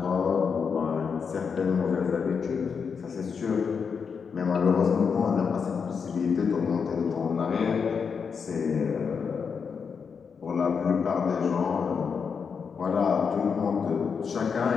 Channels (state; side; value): quieter; right; 6.1 dB